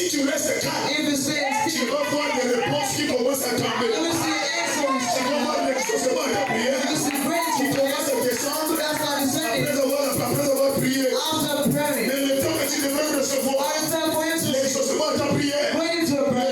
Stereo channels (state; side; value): identical; both; correlation 1.00